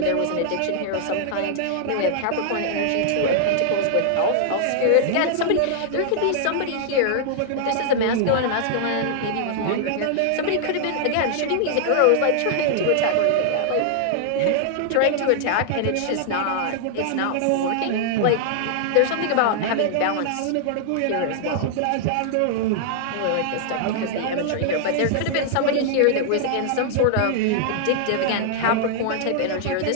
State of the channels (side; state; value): both; different; correlation -0.01